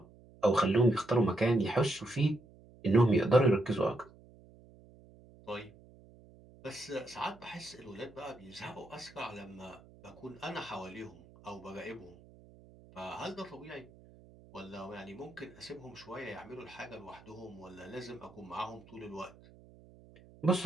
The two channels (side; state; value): right; noise; hum, 23 dB below the sound